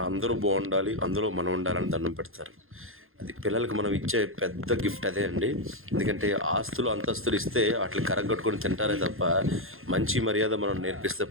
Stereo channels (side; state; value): left; late; 0.60 ms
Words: అందరూ బాగుండాలి, అందులో మనం ఉండాలని దండం పెడతారు. అది పిల్లలకి మనం ఇచ్చే పెద్ద గిఫ్ట్ అదే అండి. ఎందుకంటే ఆస్తులు అంతస్తులు ఇస్తే వాటిని కరగొట్టుకొని తింటారే తప్ప మంచి మర్యాద మనం నేర్పిస్తే